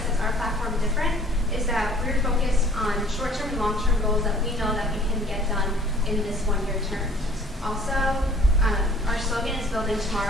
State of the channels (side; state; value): both; normal; correlation 0.53